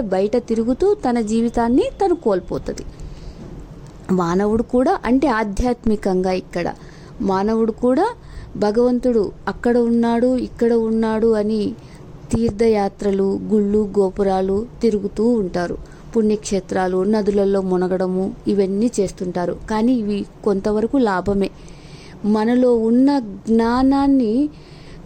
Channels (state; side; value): identical; both; correlation 1.00